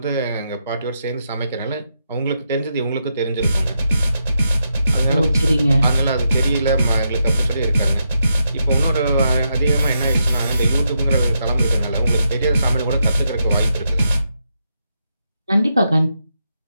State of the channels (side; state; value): both; inverted; correlation -0.83